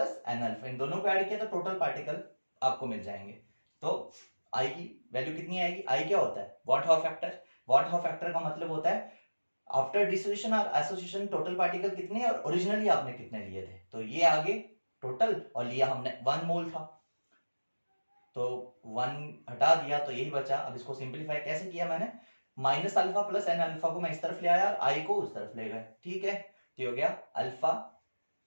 N alpha, इन दोनों को ऐड किया तो टोटल पार्टिकल आपको मिल जाएंगे। तो आई की वैल्यू कितनी आएगी? आई क्या होता है? What how factor. What how factor का मतलब होता है आफ्टर डिसोसिएशन और एसोसिएशन टोटल पार्टिकल कितने और ओरिजिनली आपने कितने लिए थे। तो ये आगे टोटल, और लिया हमने 1 मोल था, तो 1 हटा दिया तो यही बचा। अब इसको सिंप्लीफाई कैसे किया मैंने? Minus alpha plus N alpha को मैं इस तरफ ले आया और आई को उस तरफ ले गए। ठीक है, तो हो गया अल्फा,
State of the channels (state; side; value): inverted; both; correlation -1.00